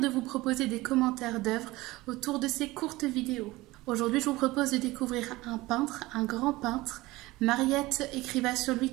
de vous proposer des commentaires d'œuvres autour de ces courtes vidéos. Aujourd'hui, je vous propose de découvrir un peintre, un grand peintre. Mariette écriva sur lui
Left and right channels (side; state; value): left; quieter; 19.7 dB